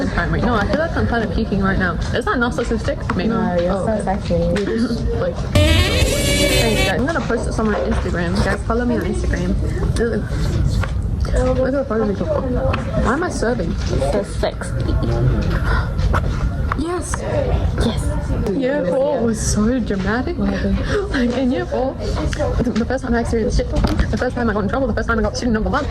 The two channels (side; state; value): both; identical; correlation 1.00